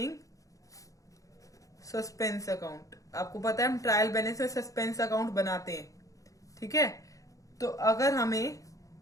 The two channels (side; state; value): right; late; 0.16 ms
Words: suspense account. आपको पता है हम ट्रायल बैलेंस में सस्पेंस अकाउंट बनाते हैं, ठीक है। तो अगर हमें